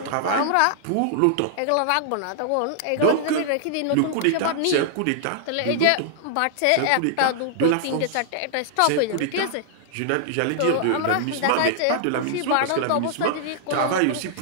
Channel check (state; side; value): different; both; correlation -0.01